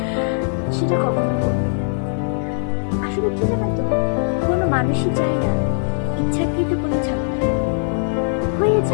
সেটা কখনো করবে না। আসলে কি জানো তো, কোনো মানুষই চায় না ইচ্ছাকৃত কোনো ঝামেলা হয়ে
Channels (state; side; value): silent; right; digital silence